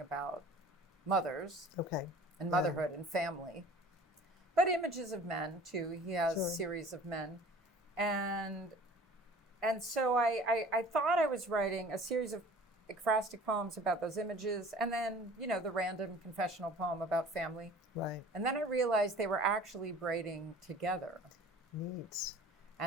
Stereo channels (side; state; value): both; normal; correlation 0.46